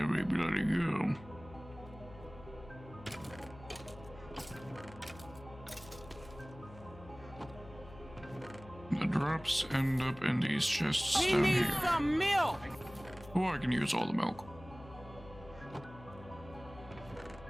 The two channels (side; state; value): left; noise; hum, 18 dB below the sound